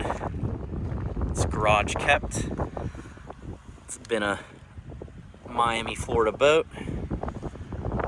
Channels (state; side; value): identical; both; correlation 1.00